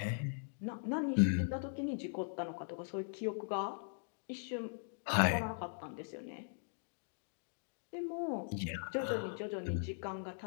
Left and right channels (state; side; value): silent; right; digital silence